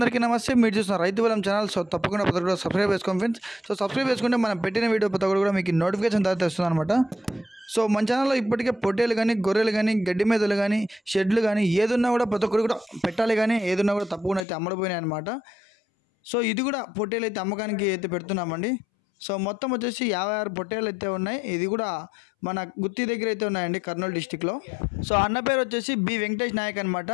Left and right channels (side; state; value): right; drops out; at 14.5 s